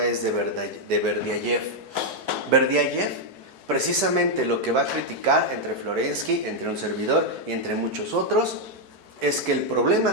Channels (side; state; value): left; late; 4.6 ms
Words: es de Berdyaev. Berdyaev, precisamente lo que va a criticar entre Florensky, entre un servidor y entre muchos otros, es que el